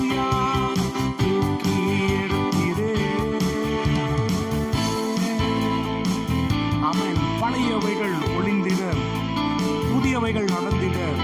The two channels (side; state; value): both; identical; correlation 1.00